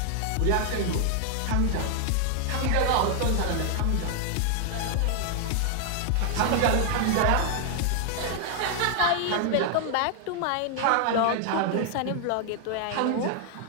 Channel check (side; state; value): both; different; correlation 0.00